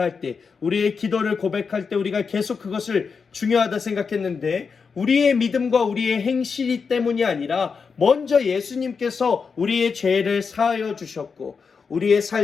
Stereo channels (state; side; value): quieter; right; 5.5 dB